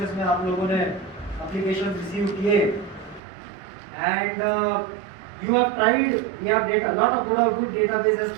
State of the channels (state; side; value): drops out; left; at 3.2 s